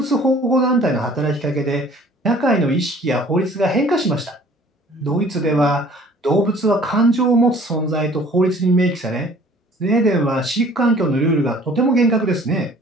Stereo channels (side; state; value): both; normal; correlation 0.52